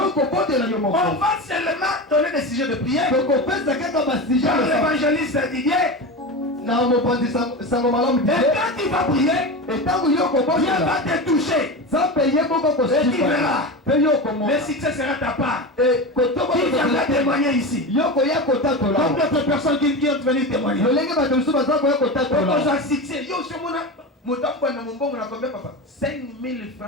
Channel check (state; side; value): normal; both; correlation 0.24